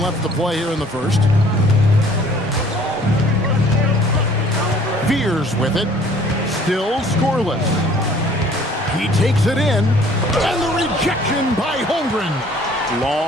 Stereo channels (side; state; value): both; normal; correlation 0.55